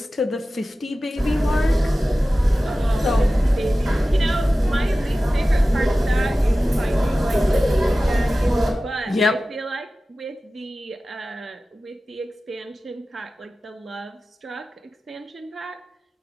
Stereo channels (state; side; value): normal; both; correlation 0.96